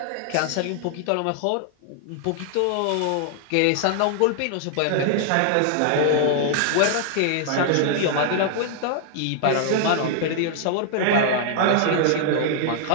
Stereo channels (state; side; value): different; both; correlation 0.00